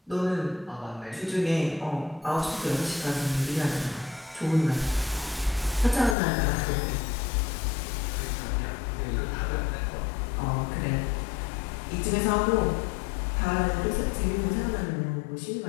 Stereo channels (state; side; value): drops out; right; at 6.2 s